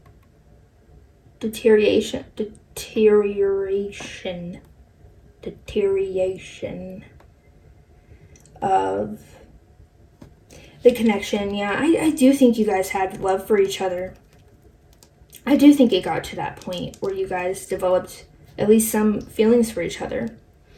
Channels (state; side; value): identical; both; correlation 1.00